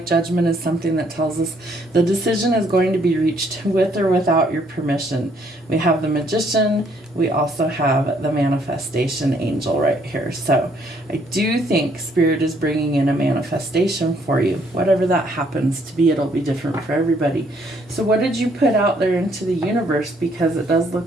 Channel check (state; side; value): normal; both; correlation 0.67